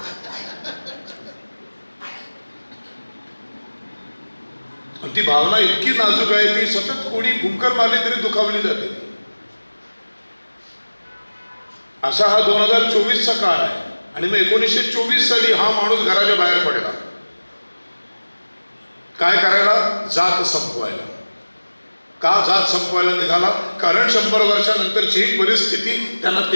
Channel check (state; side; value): inverted; both; correlation -1.00